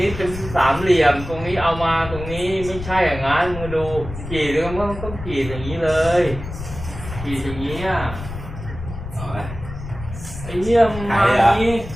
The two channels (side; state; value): left; noise; rumble, 10 dB below the sound